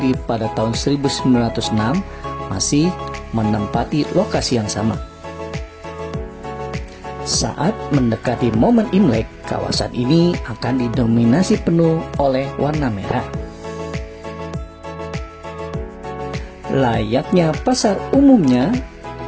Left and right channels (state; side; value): identical; both; correlation 1.00